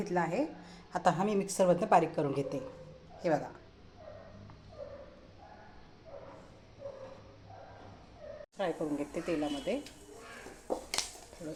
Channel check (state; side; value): identical; both; correlation 1.00